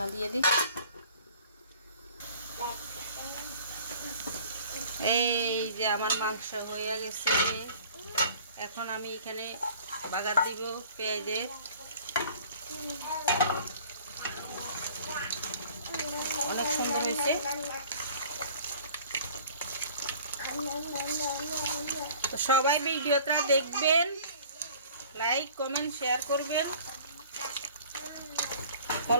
দিয়ে দিই। এই যে আমার মাংস হয়ে গেছে। এখন আমি এখানে বাগার দিব পেঁয়াজের। অনেক সুন্দর হয়েছে। তো সবাই ভিডিওটা দেখবেন, লাইক কমেন্ট শেয়ার করবেন,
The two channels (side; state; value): both; inverted; correlation -0.49